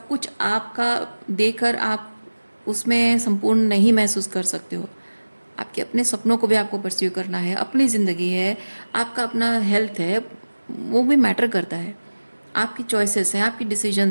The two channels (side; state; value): both; inverted; correlation -1.00